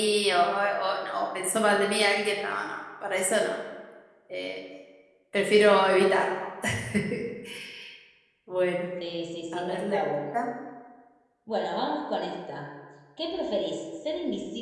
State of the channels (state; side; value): identical; both; correlation 1.00